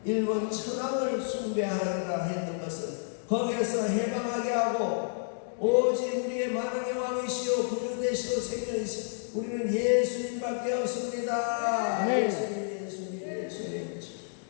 일본 천황을 숭배하라 했던 것을 거기에서 해방하게 하고 오직 우리의 만왕의 왕이시오 구주 되시오 생명이시오 우리는 예수님밖에 없습니다. 네. 예수님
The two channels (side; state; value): right; silent; digital silence